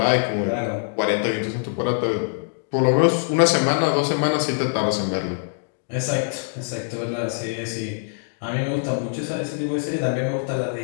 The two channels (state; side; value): silent; right; digital silence